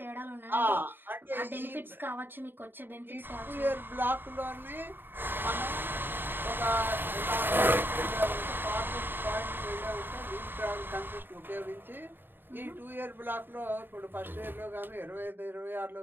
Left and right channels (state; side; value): late; left; 0.096 ms